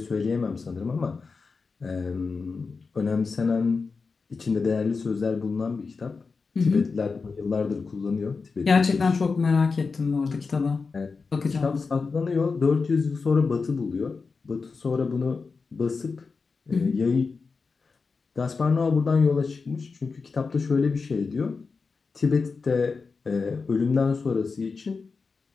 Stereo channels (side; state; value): right; quieter; 4.6 dB